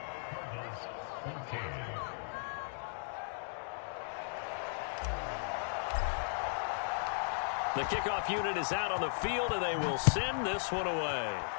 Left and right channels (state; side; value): silent; right; digital silence